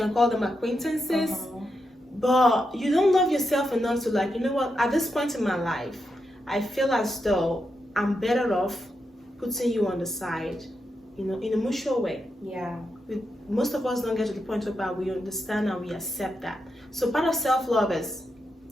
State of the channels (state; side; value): normal; both; correlation 0.85